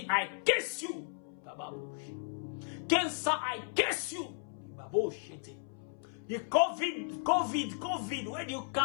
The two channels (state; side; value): silent; right; 55 dB below the other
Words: I curse you. Cancer, I curse you. The COVID, where do you